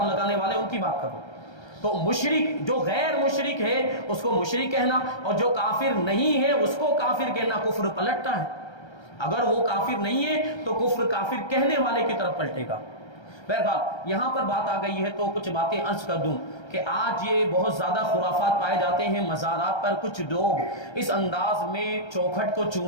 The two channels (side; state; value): right; late; 1.3 ms